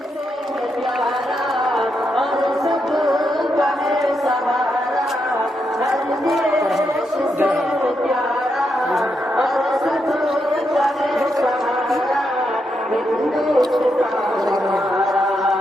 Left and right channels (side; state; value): both; normal; correlation 0.82